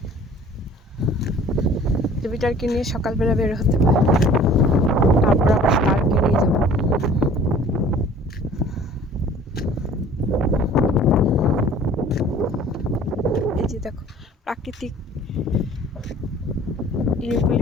জুপিটারকে নিয়ে সকালবেলা বের হতে পারে, তারপর আবার স্টারকে নিয়ে যাবো। এই যে দেখো প্রাকৃতিক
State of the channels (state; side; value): normal; both; correlation 0.49